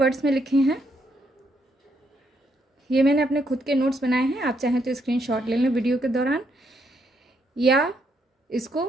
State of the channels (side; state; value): both; normal; correlation 0.75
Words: में लिखे हैं। ये मैंने अपने खुद के नोट्स बनाए हैं। आप चाहें तो स्क्रीनशॉट ले लें वीडियो के दौरान, या इसको